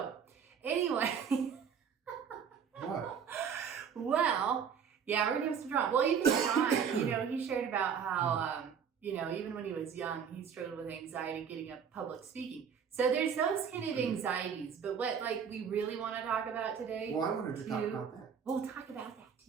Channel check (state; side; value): quieter; left; 7.2 dB